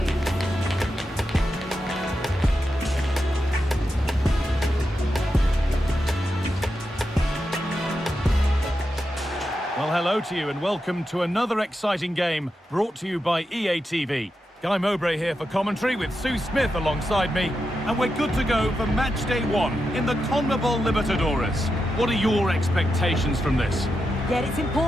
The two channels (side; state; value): both; normal; correlation 0.88